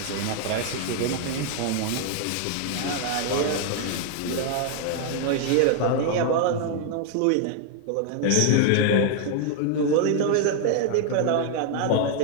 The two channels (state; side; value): different; both; correlation 0.00